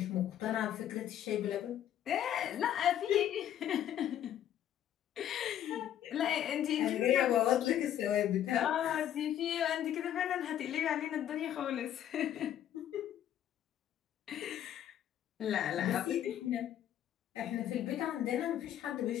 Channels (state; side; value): quieter; right; 11.0 dB